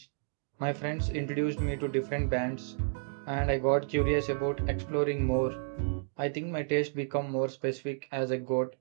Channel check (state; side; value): silent; left; digital silence